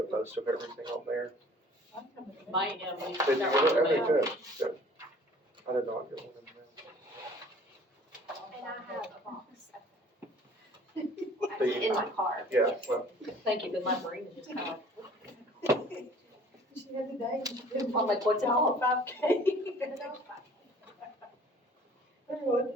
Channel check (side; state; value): both; normal; correlation 0.51